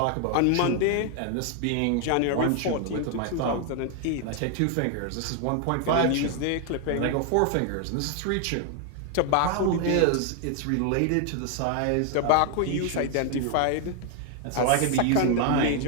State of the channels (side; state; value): both; different; correlation 0.00